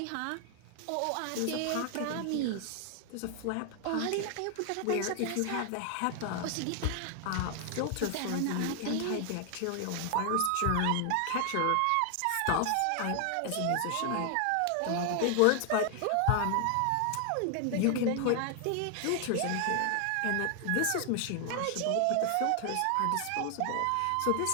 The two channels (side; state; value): both; different; correlation 0.00